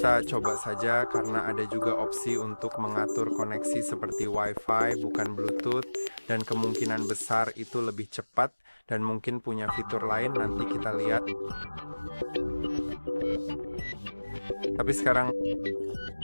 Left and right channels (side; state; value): both; inverted; correlation -1.00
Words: coba saja karena ada juga opsi untuk mengatur koneksi seperti Wi-Fi bukan Bluetooth dan kemungkinan besar itu lebih cepat dan mungkin punya fitur lain, nanti kita lihat. Tapi sekarang